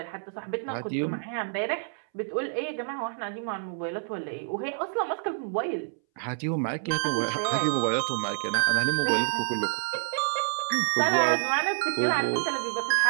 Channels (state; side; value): silent; left; 59 dB below the other